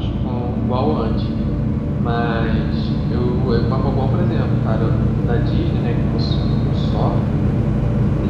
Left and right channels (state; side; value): identical; both; correlation 1.00